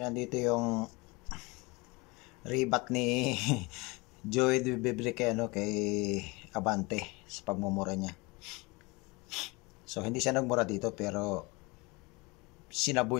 nandito yung rebat ni Joey De Vibre kay Abante sa pagmumura niya. So, hindi siya nagmura dito, pero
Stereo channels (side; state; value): right; quieter; 25.4 dB